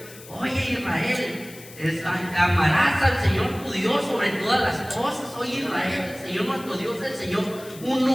Oye, Israel, amarás al Señor tu Dios sobre todas las cosas. Oye, Israel, el Señor nuestro Dios, el Señor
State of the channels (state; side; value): noise; left; hiss, 18 dB below the sound